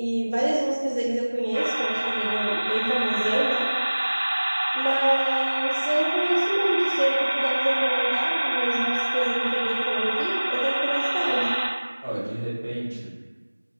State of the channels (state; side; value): inverted; both; correlation -1.00